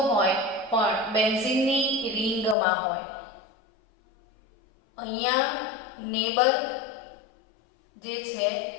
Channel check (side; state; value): right; drops out; at 2.6 s